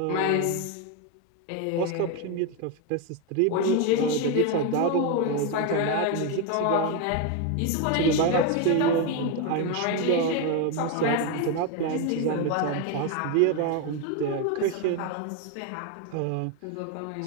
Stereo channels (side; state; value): both; different; correlation 0.02